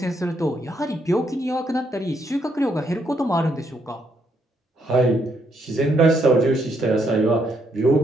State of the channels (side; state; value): both; normal; correlation 0.74